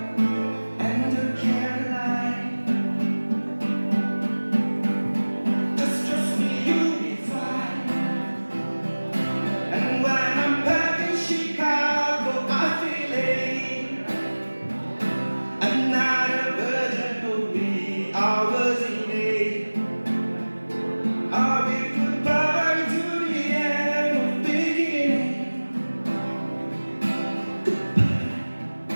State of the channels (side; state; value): both; inverted; correlation -1.00